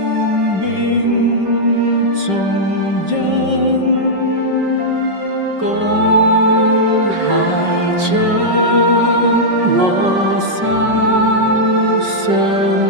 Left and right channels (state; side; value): late; left; 5.3 ms